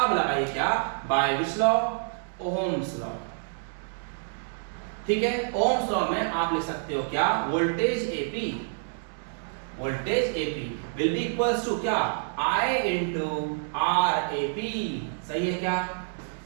लगाइए क्या? By which law? Ohm's law. ठीक है, ओहम्स लॉ में आप लिख सकते हो क्या? Voltage AP, voltage AP will be equals to क्या? I into RAP। सही है क्या?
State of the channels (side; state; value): left; silent; digital silence